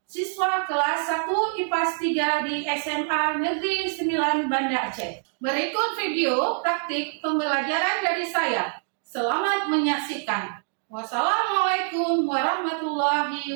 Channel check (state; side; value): silent; left; 57 dB below the other